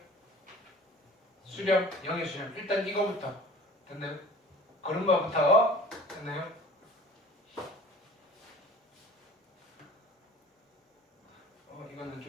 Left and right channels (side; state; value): both; normal; correlation 0.45